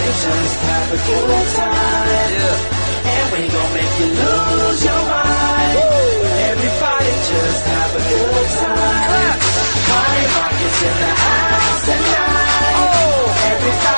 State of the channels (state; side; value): inverted; both; correlation -1.00